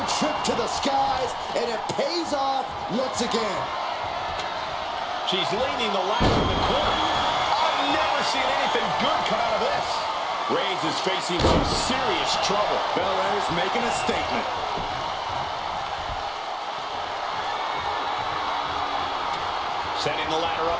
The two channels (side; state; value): both; identical; correlation 1.00